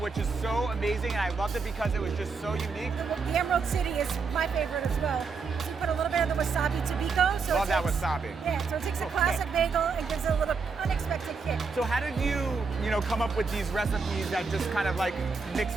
is so amazing, and I loved it because it was just so unique. The Emerald City is my favorite as well. So you put a little bit of the wasabi tobiko. So Love that wasabi. Yeah, so it takes a classic bagel and gives it a little unexpected kick. So how did you come up with these recipes that just kind of like mix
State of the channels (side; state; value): left; quieter; 4.9 dB